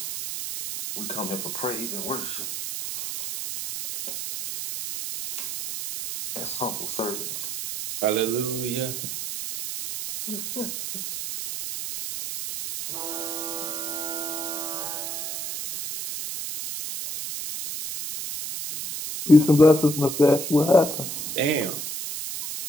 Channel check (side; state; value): right; noise; hiss, 5 dB below the sound